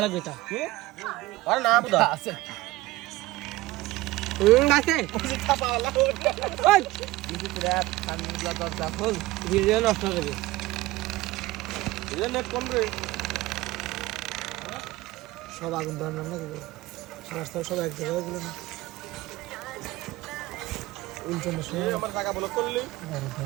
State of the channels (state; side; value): quieter; left; 18.4 dB